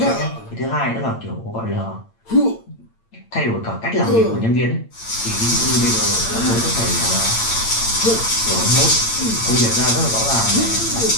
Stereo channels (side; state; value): right; late; 8.8 ms